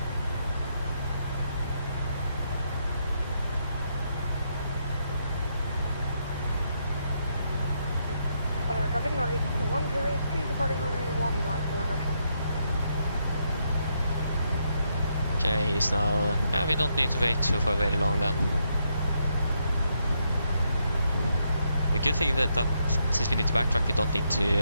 Traffic Nordic 102, departing runway 19. Okay, he's now... Yeah, we don't need to wait for very long then. A good thing that since we need to backtrack, we don't need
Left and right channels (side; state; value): both; inverted; correlation -0.78